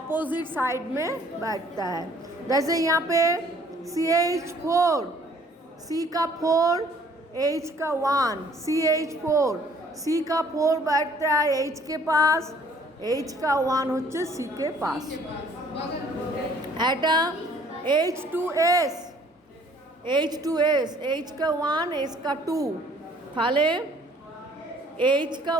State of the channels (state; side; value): normal; both; correlation 0.58